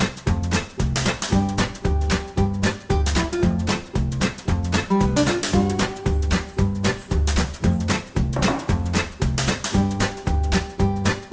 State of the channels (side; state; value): both; identical; correlation 1.00